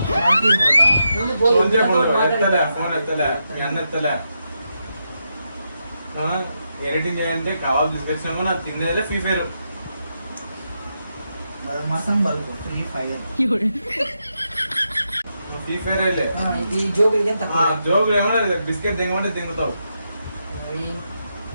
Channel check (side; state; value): both; inverted; correlation -0.84